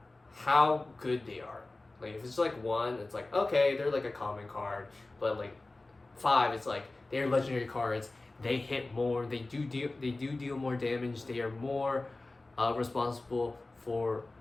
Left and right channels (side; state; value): right; quieter; 3.1 dB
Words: how good they are. Like if it's like 1, it's like, okay, they're like a common card, but like 5, it's like they're legendary cards, they hit more, they do deal more damage, they are more responsible for